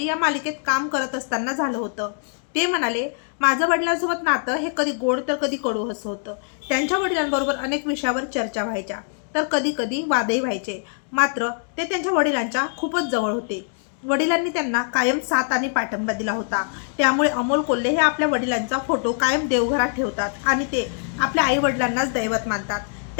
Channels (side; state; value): right; silent; 63 dB below the other